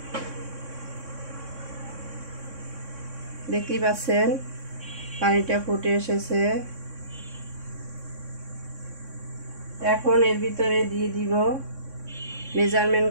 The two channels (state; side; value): late; left; 3.6 ms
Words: দেখতেই পাচ্ছেন পানিটা ফুটে এসেছে। এখন এর ভিতরে দিয়ে দিব মেজারমেন্ট